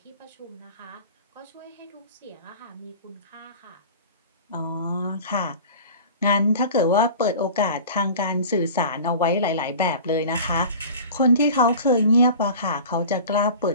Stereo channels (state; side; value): inverted; both; correlation -0.39